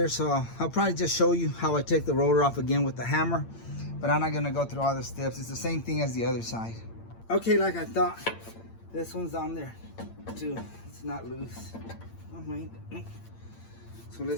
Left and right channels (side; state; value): right; late; 8.8 ms